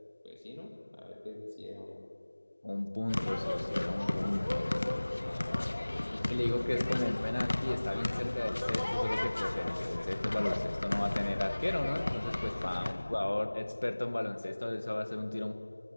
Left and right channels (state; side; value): inverted; both; correlation -1.00